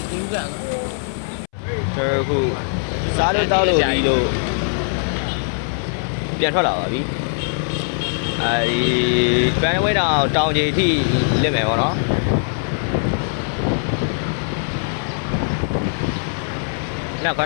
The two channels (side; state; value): right; silent; 65 dB below the other